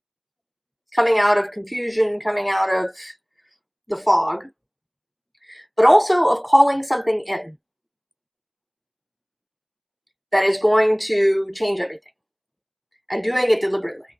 coming out of confusion, coming out of the fog, but also of calling something in that is going to change everything and doing it deliberately.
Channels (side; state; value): both; identical; correlation 1.00